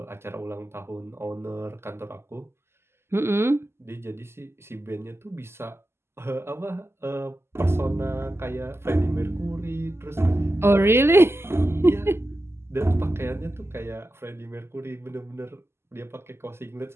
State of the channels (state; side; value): late; left; 0.12 ms